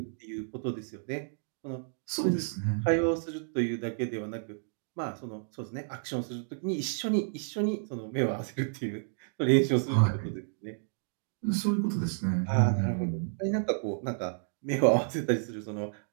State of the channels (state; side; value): silent; left; digital silence